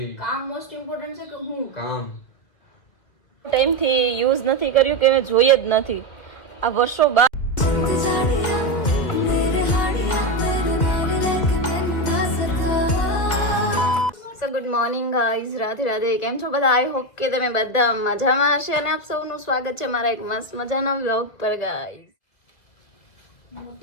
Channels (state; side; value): late; right; 2.0 ms